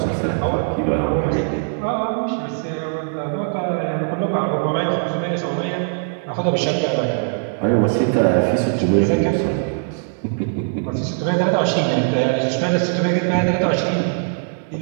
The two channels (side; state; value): left; silent; 64 dB below the other